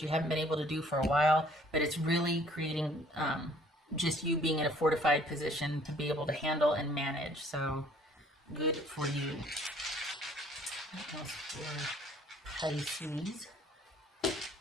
you haven't been able to do for a while, but it's really creating just you being in a fortified position to be able to handle and manage. So good for you. What else for Pisces?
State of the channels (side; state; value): both; normal; correlation 0.57